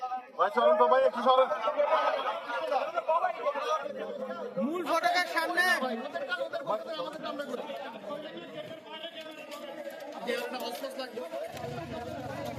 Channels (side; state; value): both; identical; correlation 1.00